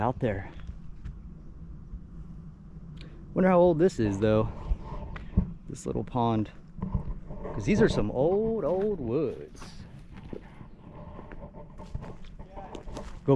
there. Wonder how old this is though, this little pond. Because these are some old woods. Go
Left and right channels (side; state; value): both; identical; correlation 1.00